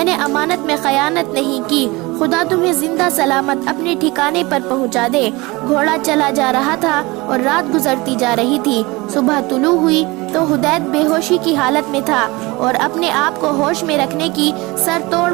نے امانت میں خیانت نہیں کی، خدا تمہیں زندہ سلامت اپنے ٹھکانے پر پہنچا دے۔ گھوڑا چلا جا رہا تھا اور رات گزرتی جا رہی تھی۔ صبح طلوع ہوئی تو حدید بے ہوشی کی حالت میں تھا اور اپنے آپ کو ہوش میں رکھنے کی سر توڑ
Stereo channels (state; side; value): quieter; left; 23.0 dB